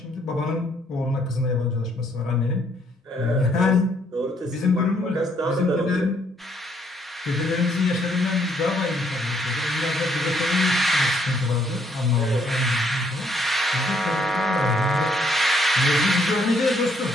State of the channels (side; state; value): both; normal; correlation 0.69